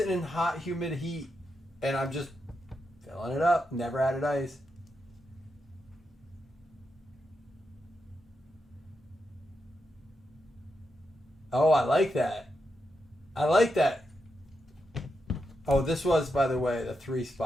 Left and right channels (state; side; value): normal; both; correlation 0.86